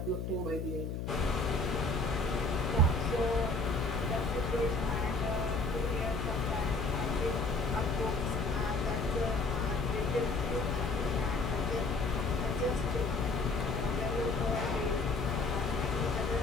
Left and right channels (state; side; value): noise; left; hum, 4 dB below the sound